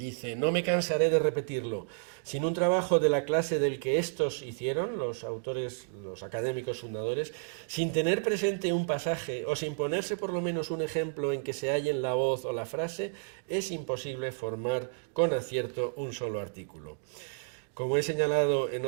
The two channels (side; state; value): left; silent; digital silence